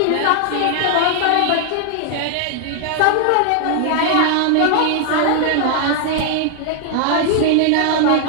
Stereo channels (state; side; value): different; both; correlation 0.00